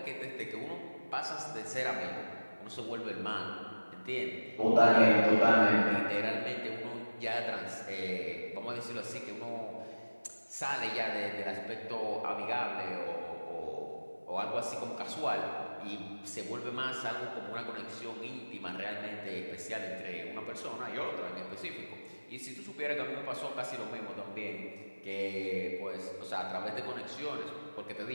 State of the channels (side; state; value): both; inverted; correlation -1.00